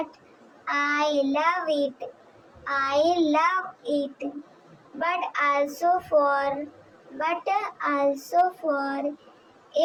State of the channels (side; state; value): both; identical; correlation 1.00